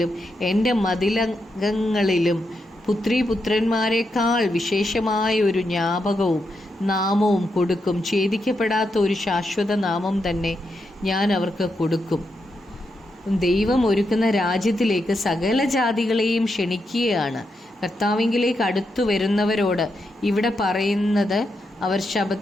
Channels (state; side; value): normal; both; correlation 0.84